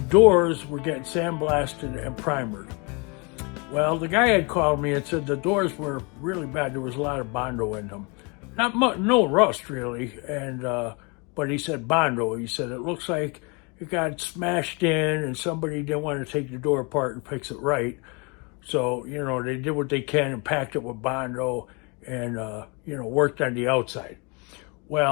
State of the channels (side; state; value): right; quieter; 31.2 dB